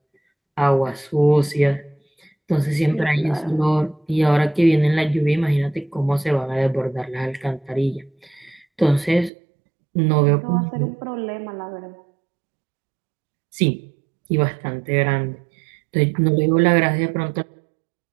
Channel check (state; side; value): drops out; left; at 9.3 s